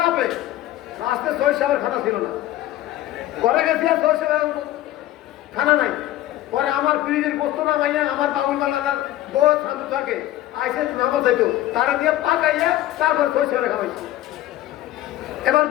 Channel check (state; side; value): quieter; right; 14.5 dB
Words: লাস্টে 6 সাহেবের খানা ছিল না, ঘরে গেছি আর 6 সাহেবের খানা নাই। পরে আমার ফ্রিজের গোস্ত নামাইয়া আমার বাবুল মালার বউ শান্ত থাকে আইসে নামত যাইতো, তারা দিয়ে পাকাইয়া তারপর 6 সাহেবের খাওয়াইছি। এবার